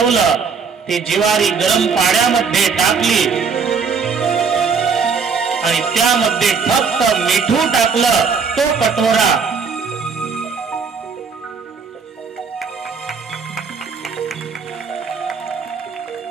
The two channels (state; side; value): quieter; left; 5.6 dB